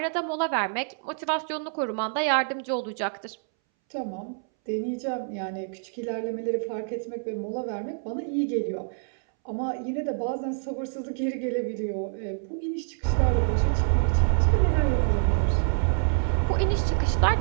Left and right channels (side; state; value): left; silent; 60 dB below the other